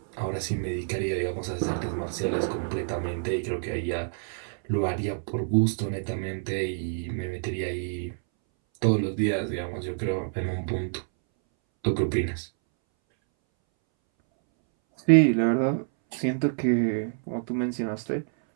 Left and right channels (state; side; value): silent; left; 60 dB below the other